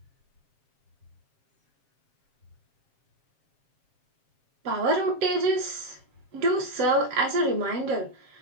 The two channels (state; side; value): late; left; 7.4 ms